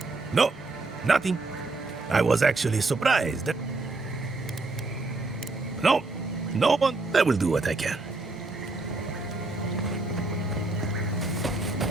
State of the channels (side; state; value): left; quieter; 3.3 dB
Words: No, nothing. I was actually surprised. No one. I will do what I can.